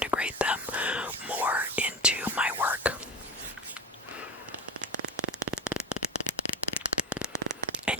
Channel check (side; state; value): both; normal; correlation 0.24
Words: them more into my work.